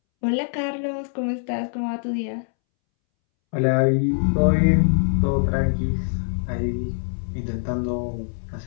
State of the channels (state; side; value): silent; right; 63 dB below the other